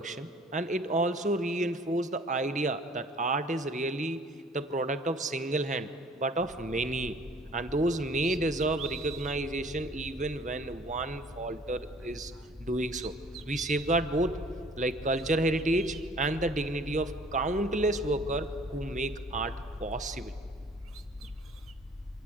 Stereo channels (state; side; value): normal; both; correlation 0.53